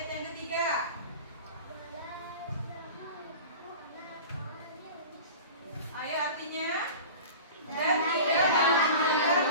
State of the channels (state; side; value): inverted; both; correlation -0.36